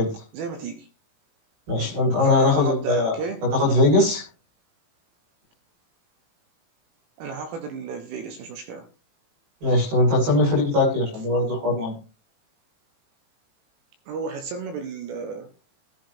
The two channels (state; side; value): late; left; 18 ms